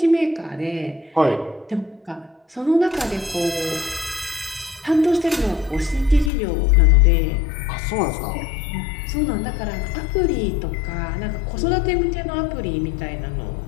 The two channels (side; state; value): right; drops out; at 6.3 s